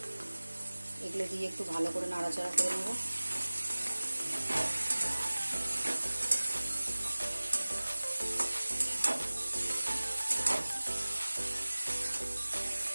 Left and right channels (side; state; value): both; inverted; correlation -1.00